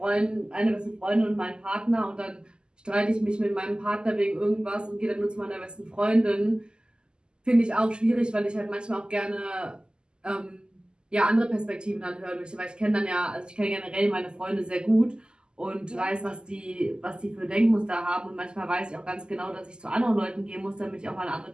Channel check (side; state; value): left; late; 0.047 ms